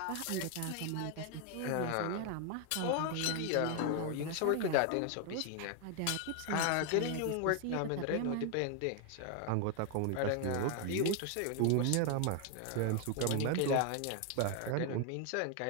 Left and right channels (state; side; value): different; both; correlation 0.01